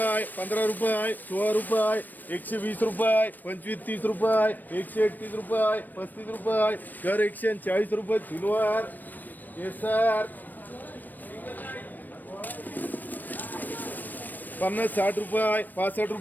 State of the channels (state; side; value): late; right; 0.088 ms